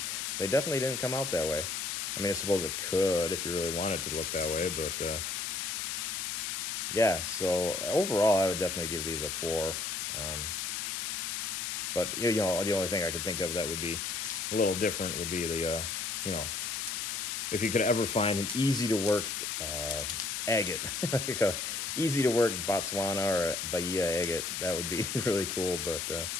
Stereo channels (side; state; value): left; noise; hiss, 2 dB below the sound